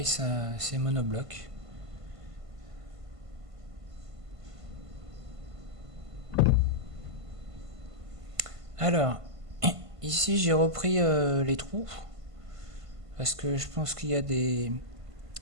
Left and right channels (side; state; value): left; late; 1.5 ms